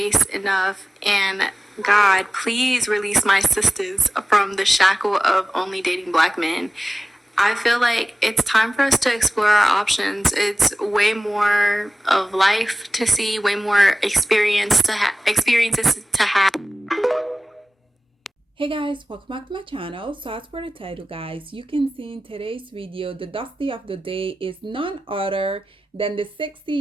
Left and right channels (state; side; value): normal; both; correlation 0.94